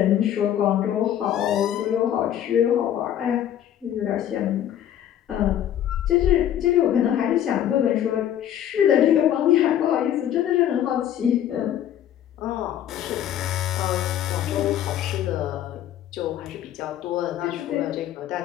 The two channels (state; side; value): quieter; right; 10.8 dB